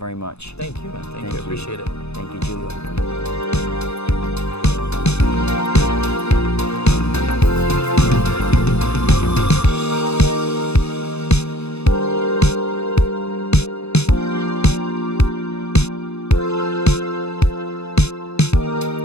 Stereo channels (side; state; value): right; late; 0.80 ms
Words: much. Thank you, man. Thank you. I appreciate it. Thank you, Giulio.